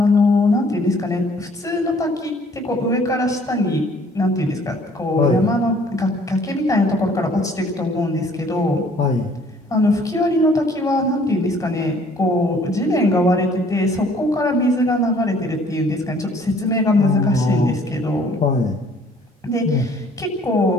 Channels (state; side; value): normal; both; correlation 0.58